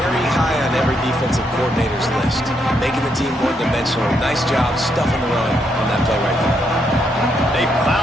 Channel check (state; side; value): normal; both; correlation 0.77